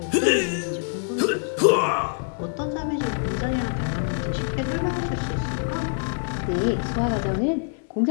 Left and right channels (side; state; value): right; silent; 62 dB below the other